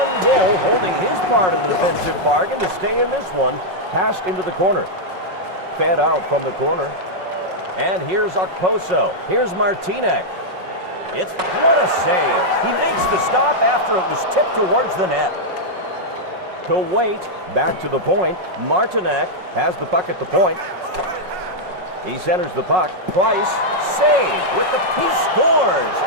goal, holding his part of the defensive bargain to stay in this one. Passed into the corner. Fed out from the corner. And here's Okposo. Here's Martinek. What a save. He makes the stop after it was tipped towards the net. To Wait, back to the point. Martinek has the puck at the point. He centers the puck. Price, save with he scores.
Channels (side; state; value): left; late; 5.5 ms